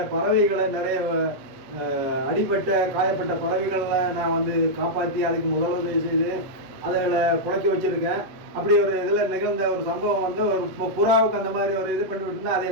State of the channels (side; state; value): left; late; 8.0 ms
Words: பறவைகளை, நிறைய அடிப்பட்ட காயப்பட்ட பறவைகளை நான் வந்து காப்பாற்றி அதுக்கு முதலுதவி செய்து அதில் புழைக்க வச்சிருக்கேன். அப்படி ஒரு இதில் நிகழ்ந்த ஒரு சம்பவம் வந்து ஒரு புறாவுக்கு அந்த மாதிரி ஒரு இது பண்ணி விட்டுருந்தா அது